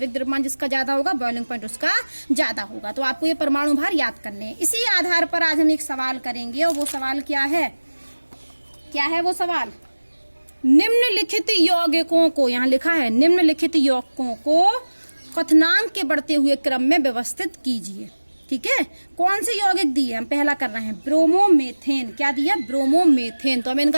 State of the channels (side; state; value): both; inverted; correlation -1.00